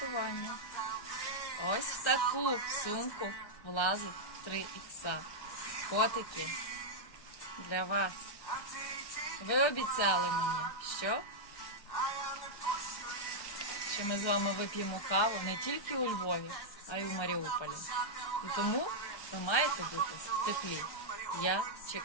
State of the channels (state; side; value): late; right; 1.3 ms